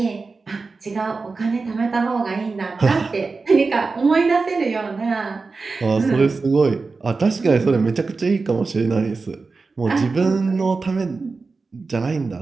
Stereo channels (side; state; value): left; quieter; 4.1 dB